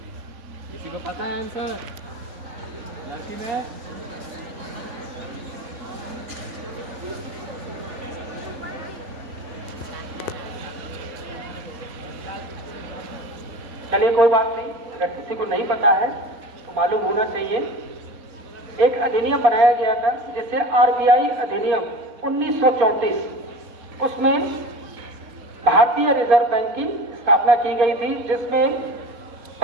किसी को पता है आंसर? लड़की में चलिए कोई बात नहीं, अगर किसी को नहीं पता है तो मालूम होना चाहिए। एक अधिनियम बनाया गया था जिसे आरबीआई अधिनियम 1934, उसमें भारतीय रिजर्व बैंक की स्थापना की गई थी, जिसमें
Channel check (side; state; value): left; late; 4.3 ms